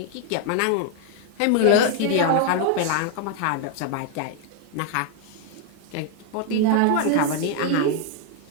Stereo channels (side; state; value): both; different; correlation 0.00